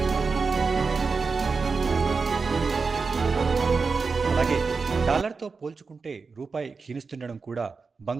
అలాగే డాలర్తో పోల్చుకుంటే రూపాయి క్షీణిస్తుండడం కూడా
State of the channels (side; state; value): left; quieter; 4.7 dB